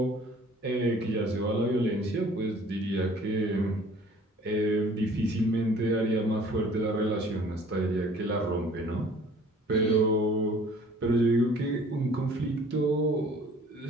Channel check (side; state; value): both; normal; correlation 0.52